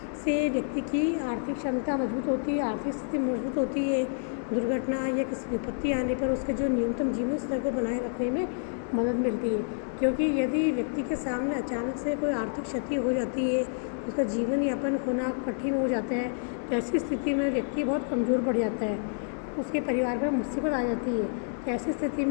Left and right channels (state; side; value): silent; right; digital silence